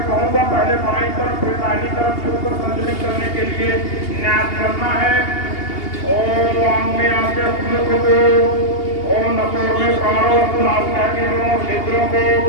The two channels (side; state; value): right; late; 2.8 ms